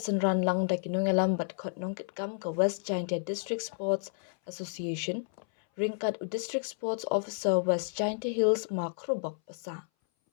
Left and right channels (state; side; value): silent; right; 57 dB below the other